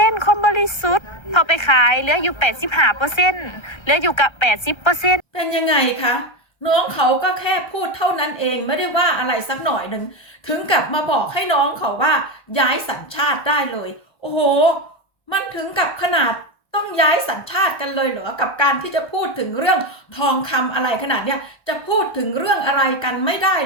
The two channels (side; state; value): right; late; 1.3 ms